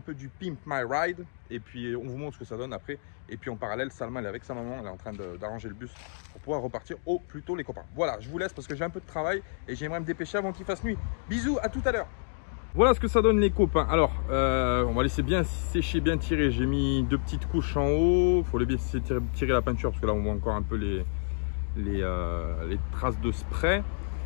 du Pimp My Ride. Et puis on vous montre ce que ça donne après. Et puis en parallèle, Salma elle est avec sa maman, elle est en train d'arranger le bus pour pouvoir repartir au plus tôt les copains. Voilà, je vous laisse parce que j'ai un peu de travail et j'aimerais me dépêcher avant qu'il fasse nuit. Bisous, à tout à l'heure. Voilà ce que ça donne les copains. Alors, on va laisser bien sécher, bien tirer. J'ai mis 2 petites couches en haut. Il faut les laisser tirer la peinture parce que là on voit encore un peu les traces de spray.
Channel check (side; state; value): right; silent; digital silence